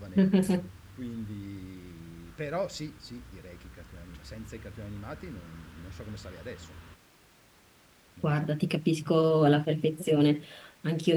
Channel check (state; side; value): identical; both; correlation 1.00